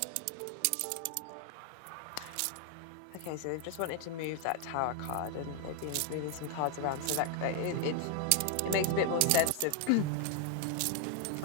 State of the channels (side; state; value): both; different; correlation 0.00